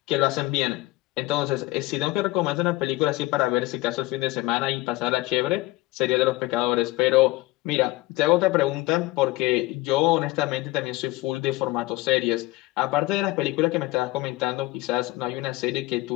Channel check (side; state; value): right; quieter; 19.8 dB